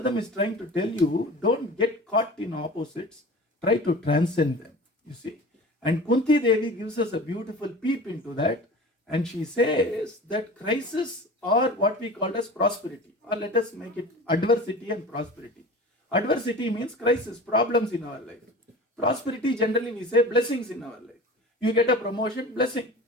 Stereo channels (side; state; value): both; normal; correlation 0.37